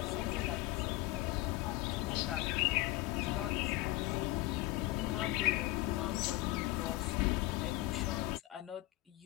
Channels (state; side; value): quieter; right; 18.3 dB